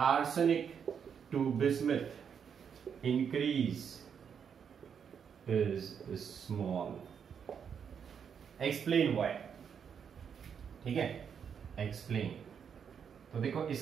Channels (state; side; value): quieter; left; 7.3 dB